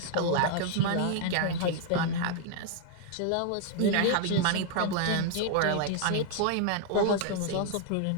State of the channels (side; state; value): both; different; correlation 0.00